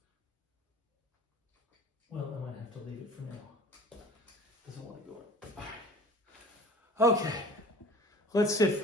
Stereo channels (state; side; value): normal; both; correlation 0.44